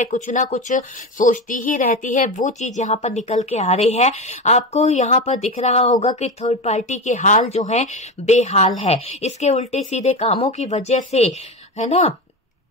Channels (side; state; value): both; normal; correlation 0.20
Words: कुछ ना कुछ सोचती ही रहती है। वो चीज यहाँ पर निकल के आ रही है। आपको यहाँ पर दिख रहा होगा कि थर्ड पार्टी के हाल जो है बेहाल है, इसके उल्टे सीधे कामों की वजह से, है ना